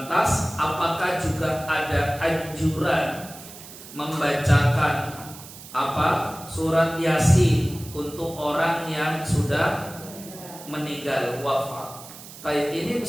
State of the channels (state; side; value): noise; right; hiss, 16 dB below the sound